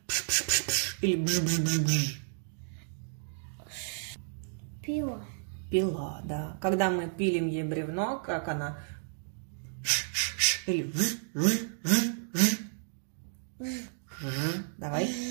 Пш-пш-пш-пш. Или бж-бж-бж-бж. Пила. Пила, да. Когда мы пилим ей бревно, как она? Ш-ш-ш. Или ж-ж-ж-ж. Ж. Давай.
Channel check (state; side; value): silent; left; digital silence